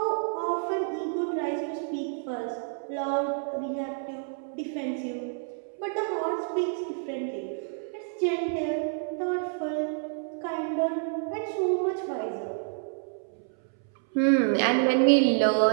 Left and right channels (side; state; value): left; silent; 59 dB below the other